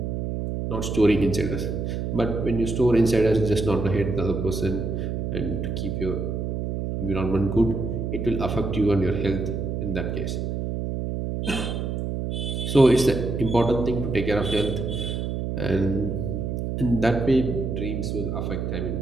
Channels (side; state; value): right; noise; hum, 2 dB below the sound